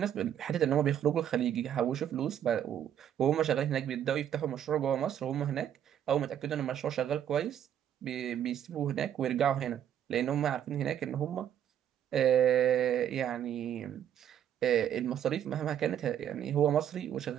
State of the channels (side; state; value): left; quieter; 10.0 dB